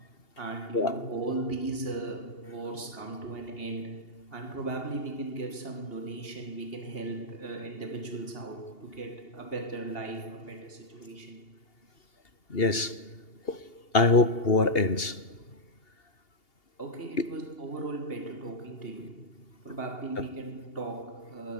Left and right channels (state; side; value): late; right; 2.8 ms